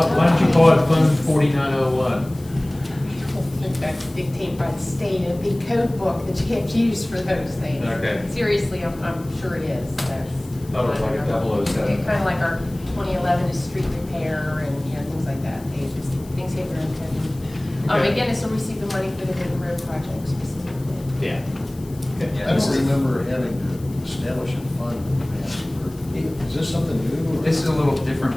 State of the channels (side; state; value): left; noise; hiss, 23 dB below the sound